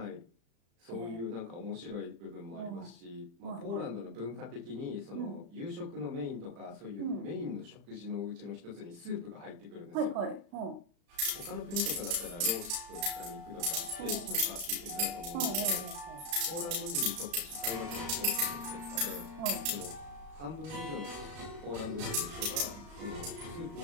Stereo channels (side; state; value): left; late; 35 ms